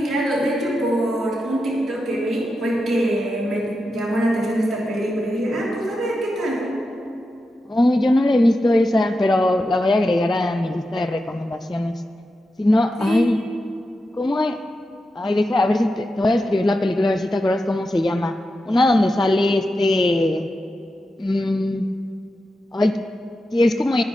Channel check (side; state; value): both; normal; correlation 0.89